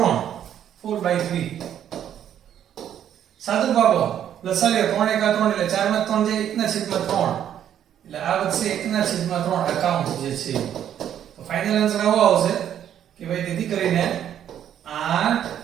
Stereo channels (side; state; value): left; quieter; 10.1 dB